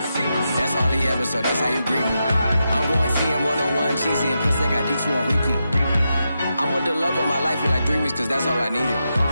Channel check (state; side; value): inverted; both; correlation -0.87